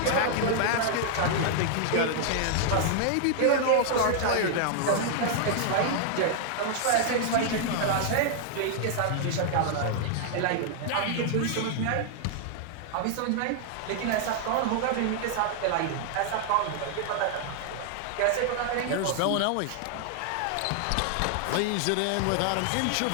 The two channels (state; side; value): different; both; correlation 0.00